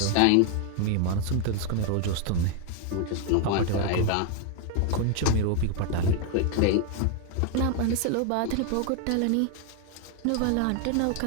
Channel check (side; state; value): both; different; correlation 0.00